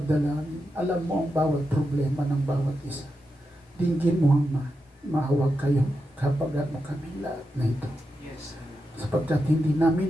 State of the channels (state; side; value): normal; both; correlation 0.88